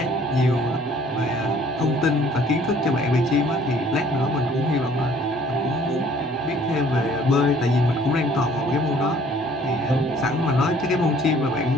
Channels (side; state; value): both; normal; correlation 0.56